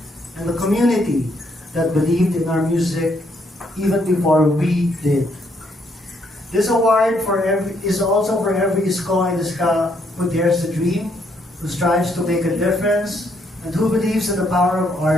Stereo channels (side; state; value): both; normal; correlation 0.72